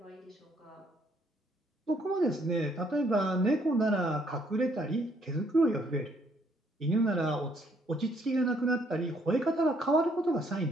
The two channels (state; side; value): normal; both; correlation 0.68